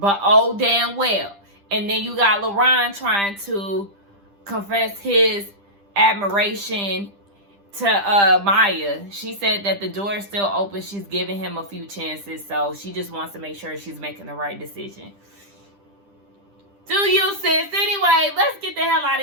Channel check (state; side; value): late; left; 10 ms